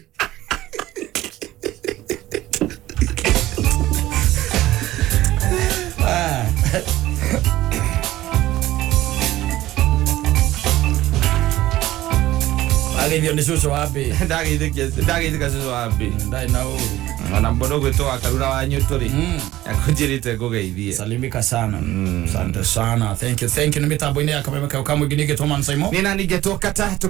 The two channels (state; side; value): quieter; left; 15.5 dB